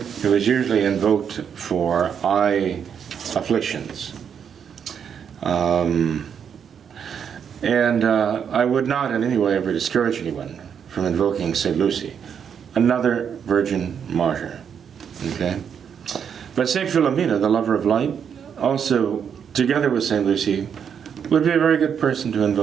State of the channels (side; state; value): left; quieter; 7.6 dB